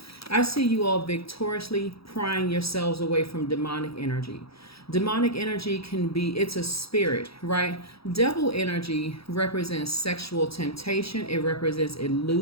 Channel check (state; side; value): late; right; 0.76 ms